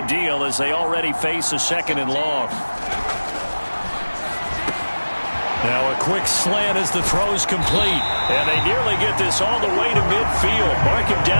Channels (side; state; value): both; inverted; correlation -1.00